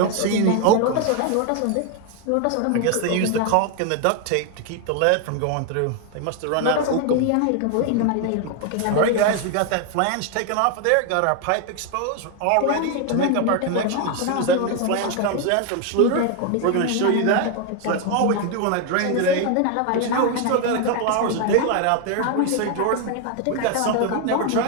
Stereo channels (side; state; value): both; different; correlation 0.01